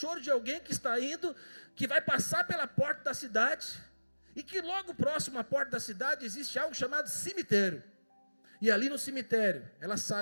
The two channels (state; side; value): inverted; both; correlation -1.00